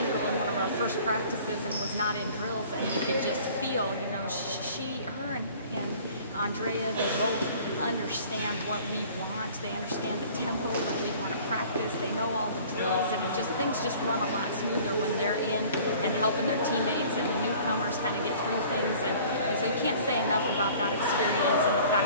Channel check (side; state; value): both; inverted; correlation -0.49